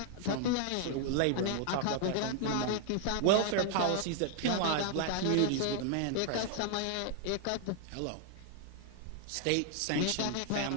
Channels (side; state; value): both; different; correlation -0.01